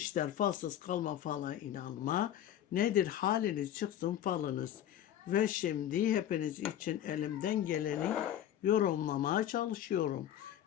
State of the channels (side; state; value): right; quieter; 11.1 dB